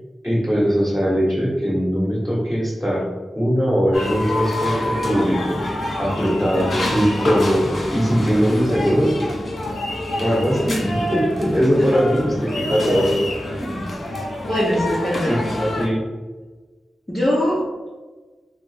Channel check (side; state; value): both; normal; correlation 0.93